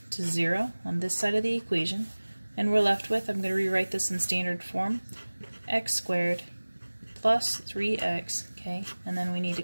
to 0 on this side of the equation. And we're left with, I'm going to rewrite this in standard form, x squared plus 3x, okay, and then we need to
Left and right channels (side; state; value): both; inverted; correlation -1.00